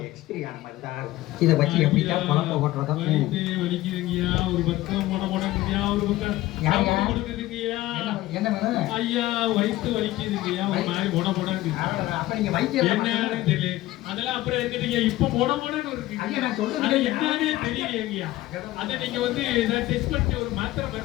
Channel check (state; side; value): quieter; right; 16.5 dB